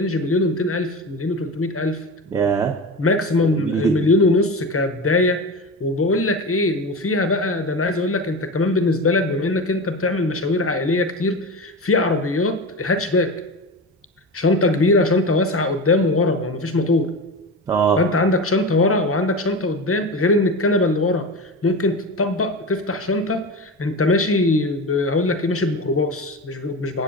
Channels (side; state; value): both; normal; correlation 0.25